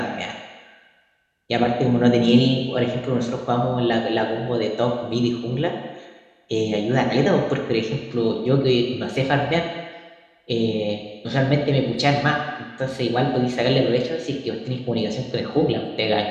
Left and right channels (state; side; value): identical; both; correlation 1.00